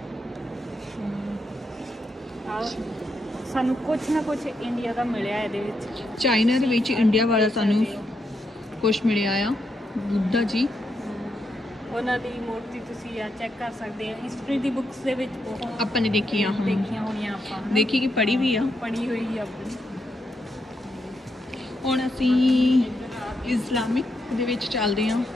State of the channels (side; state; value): both; normal; correlation 0.81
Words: ਸਾਨੂੰ ਕੁਛ ਨਾ ਕੁਛ ਇੰਡੀਆ ਦਾ ਮਿਲਿਆ ਇਹਦੇ ਵਿੱਚ। ਚਾਈਨਾ ਦੇ ਵਿੱਚ ਇੰਡੀਆ ਵਾਲਾ ਸਾਨੂੰ ਕੁਛ ਮਿਲਿਆ ਆ, ਬੁੱਧਾ ਜੀ। ਉਹਨਾਂ ਦੀ ਮੂਰਤੀ ਤੁਸੀਂ ਆ ਚੈੱਕ ਕਰ ਸਕਦੇ ਆ, ਹਿਸਟਰੀ ਦੀ ਬੁੱਕਸ ਦੇ ਵਿੱਚ ਬਹੁਤ ਆਪਾਂ ਨੇ ਦੇਖੀਆਂ ਹਾਂ, ਦੇਖੀਆਂ ਹੋਣੀਆਂ ਆਪਾਂ, ਦੇਖੀ ਕਿ ਪੜ੍ਹੀ ਵੀ ਆ। ਪੜ੍ਹੀ ਹੋਈ ਆ ਆਪਣੀ। ਹੁਣ ਅਸੀਂ ਇਸਲਾਮਿਕ ਦੇ ਵਿੱਚ ਚੱਲਦੇ ਹਾਂ